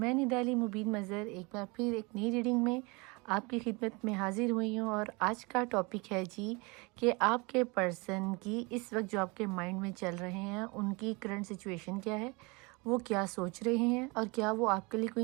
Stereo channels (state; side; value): quieter; left; 27.5 dB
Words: निदाली मुबीन मज़र एक बार फिर एक नई रीडिंग में आपकी खिदमत में हाज़िर हुई हूँ। और आज का टॉपिक है जी कि आपके पर्सन की इस वक्त जो आपके माइंड में चल रहे हैं उनकी करंट सिचुएशन क्या है, वो क्या सोच रहे हैं और क्या वो आपके लिए कोई